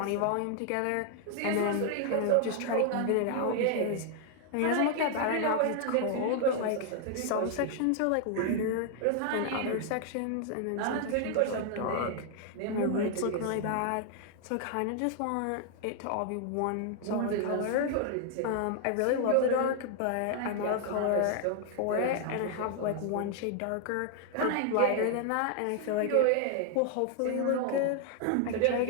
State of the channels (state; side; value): different; both; correlation 0.00